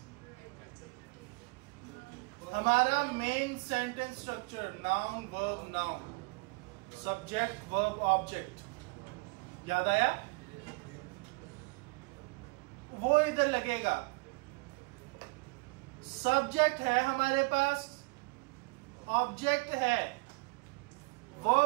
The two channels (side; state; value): left; quieter; 29.1 dB